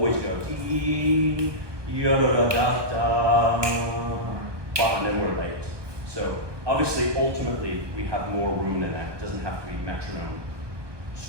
go dee, da da da da, and then we're late. So obviously, ultimately, we have more room than that. It doesn't have to be metronome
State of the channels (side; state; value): left; late; 1.2 ms